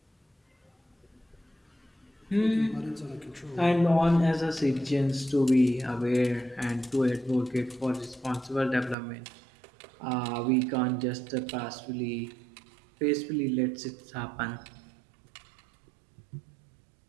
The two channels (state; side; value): drops out; left; at 9.0 s